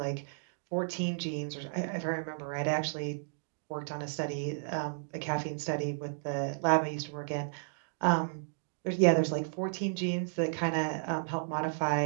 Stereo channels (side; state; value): left; silent; digital silence